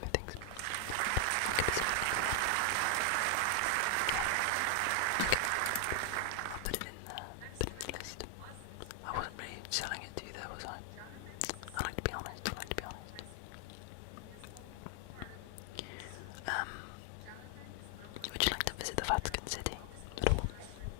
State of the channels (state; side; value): different; both; correlation 0.00